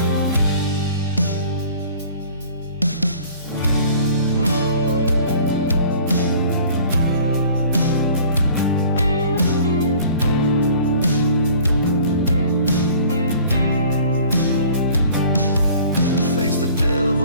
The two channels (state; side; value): inverted; both; correlation -0.49